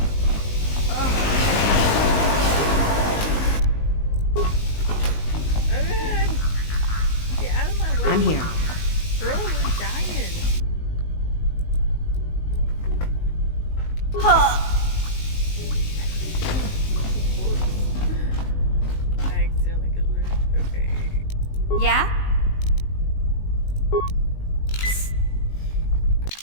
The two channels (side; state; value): right; late; 19 ms